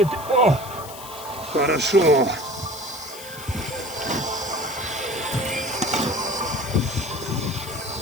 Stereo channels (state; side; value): noise; left; hiss, 15 dB below the sound